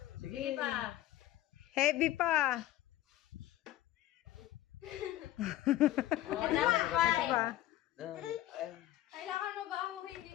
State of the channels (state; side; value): quieter; right; 14.2 dB